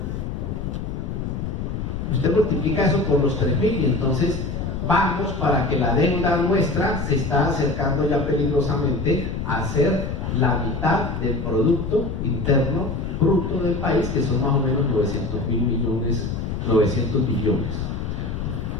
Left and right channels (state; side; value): noise; left; rumble, 4 dB below the sound